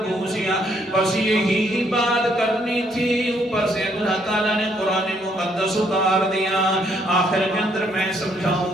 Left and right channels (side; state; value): both; normal; correlation 0.69